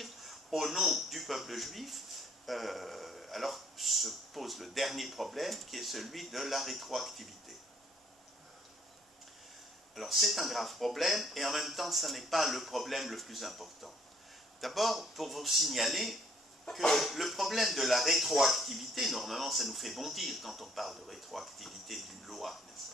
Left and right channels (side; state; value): both; normal; correlation 0.63